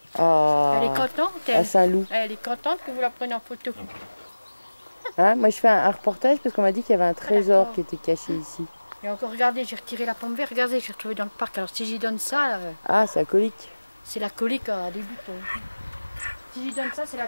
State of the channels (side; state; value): both; inverted; correlation -1.00